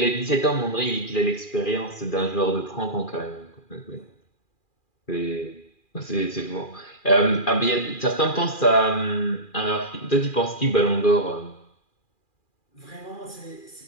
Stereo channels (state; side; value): late; right; 2.4 ms